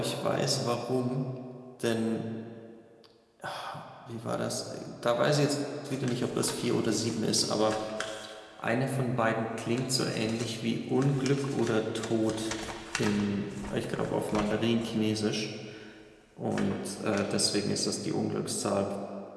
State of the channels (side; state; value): both; identical; correlation 1.00